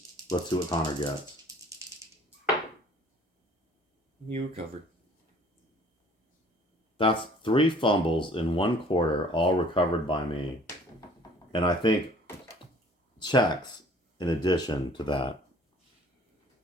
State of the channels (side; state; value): both; normal; correlation 0.53